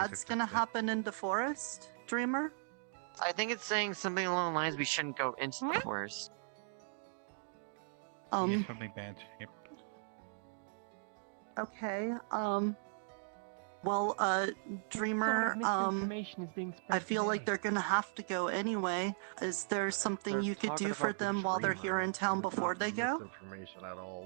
gonna happen in the forest, Dreamer? I think it's saying something along the lines we shouldn't go into the forest. Something bad. Yep. Okay, well, Dreamer, I feel like they're gonna have to go anyway. Is there something you could do for them while they're here in town before they go? Information at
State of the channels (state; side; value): silent; left; digital silence